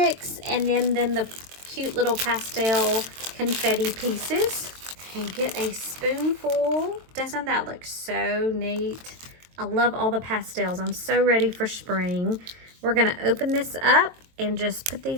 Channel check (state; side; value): late; left; 23 ms